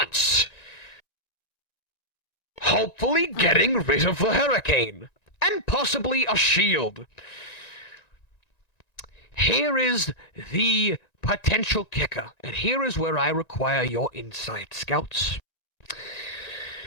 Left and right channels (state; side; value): late; right; 1.9 ms